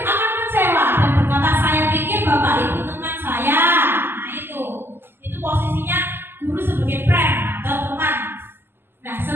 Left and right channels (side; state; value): left; late; 0.11 ms